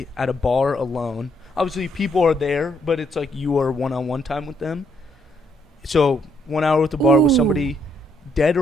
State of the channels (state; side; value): normal; both; correlation 0.73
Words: at a bar alone. Obviously, people are there, but it's like you are one-on-one time with them. So 1 hour with the bar with somebody, dead